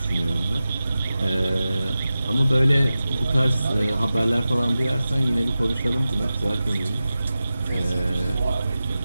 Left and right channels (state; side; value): inverted; both; correlation -0.94